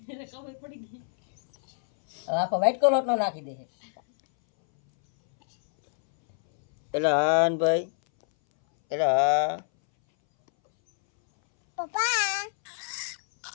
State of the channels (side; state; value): right; silent; 61 dB below the other